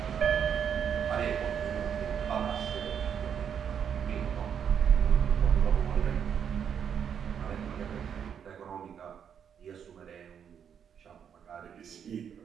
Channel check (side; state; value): left; quieter; 8.0 dB